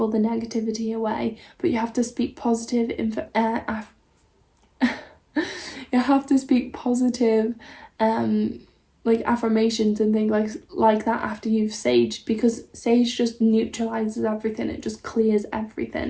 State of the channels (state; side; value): identical; both; correlation 1.00